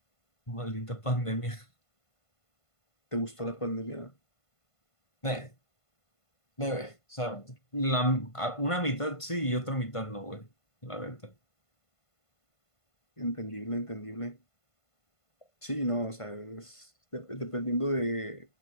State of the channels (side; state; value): right; late; 1.5 ms